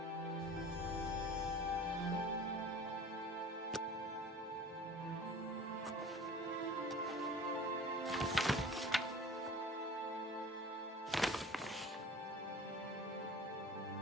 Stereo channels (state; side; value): normal; both; correlation 0.43